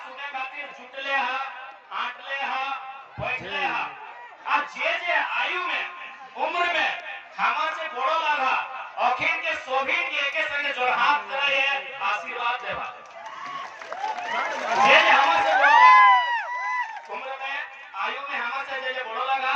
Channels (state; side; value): identical; both; correlation 1.00